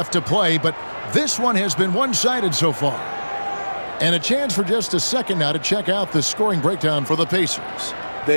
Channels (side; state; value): both; inverted; correlation -1.00